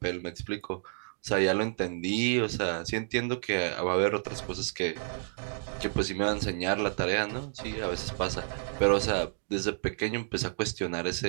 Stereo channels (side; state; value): left; silent; digital silence